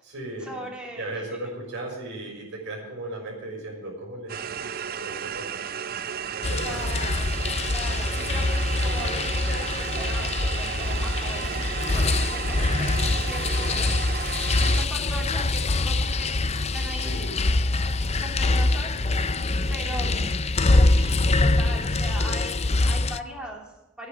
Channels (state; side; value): normal; both; correlation 0.69